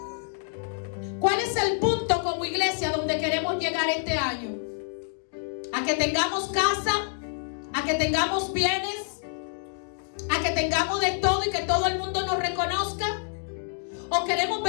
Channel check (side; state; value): right; silent; digital silence